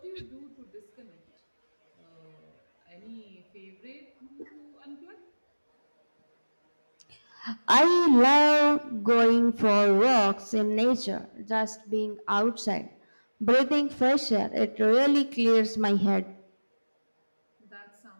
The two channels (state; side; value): inverted; both; correlation -1.00